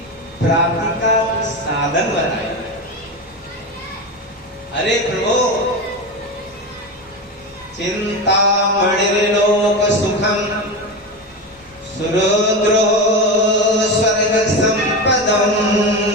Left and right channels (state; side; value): normal; both; correlation 0.20